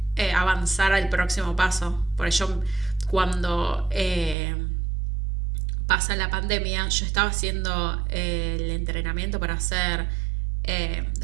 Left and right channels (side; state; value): left; drops out; at 4.4 s